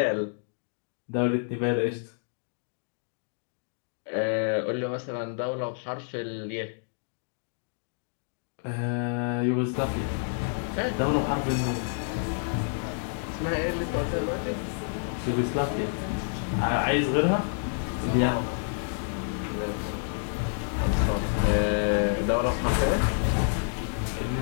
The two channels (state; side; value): silent; right; digital silence